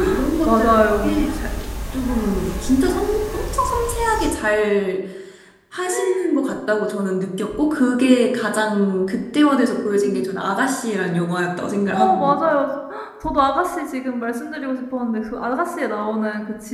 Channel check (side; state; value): both; identical; correlation 1.00